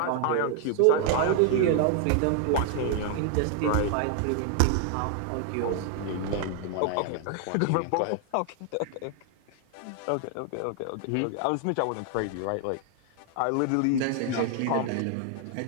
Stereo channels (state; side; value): different; both; correlation 0.00